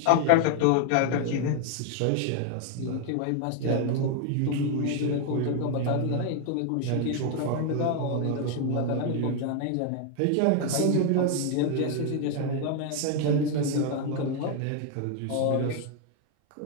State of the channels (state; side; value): different; both; correlation 0.01